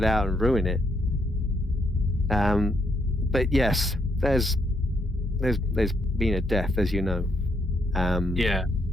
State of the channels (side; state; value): both; normal; correlation 0.75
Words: out and ruin it. But yes, there's been a death, as you know.